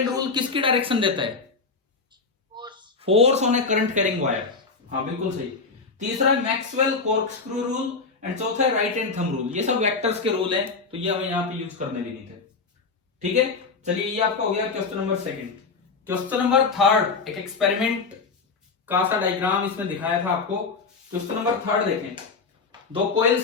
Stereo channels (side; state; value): right; quieter; 4.5 dB